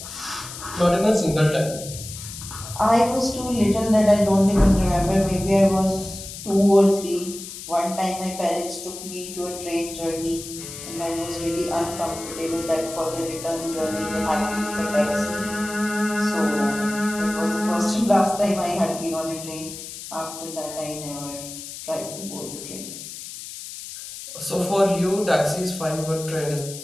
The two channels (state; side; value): noise; left; hiss, 11 dB below the sound